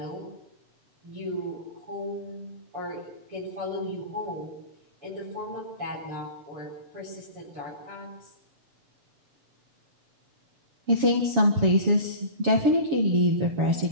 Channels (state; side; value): late; left; 7.2 ms